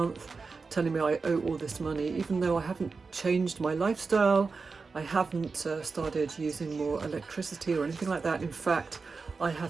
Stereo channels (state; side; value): quieter; left; 4.5 dB